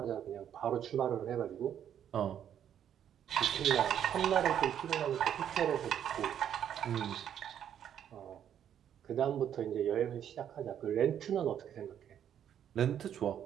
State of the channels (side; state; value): left; quieter; 9.6 dB